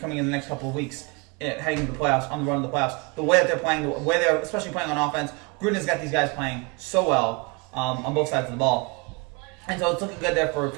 in the next couple of weeks, heading into the playoffs, on the run of the playoffs. The way that they're playing, the way they're especially playing on offense, Gruden has got these guys playing so well on both sides of the ball. And so it's looking good there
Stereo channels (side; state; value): left; quieter; 29.7 dB